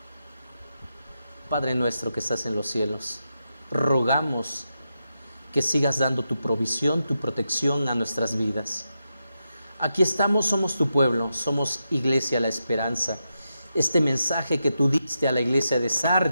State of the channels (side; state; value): both; inverted; correlation -0.87